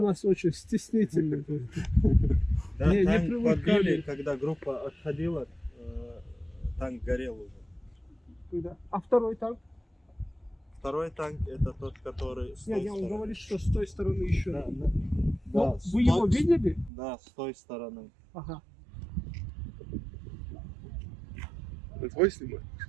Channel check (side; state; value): left; drops out; at 16.9 s